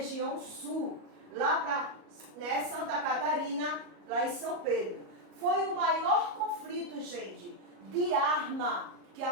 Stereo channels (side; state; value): left; late; 37 ms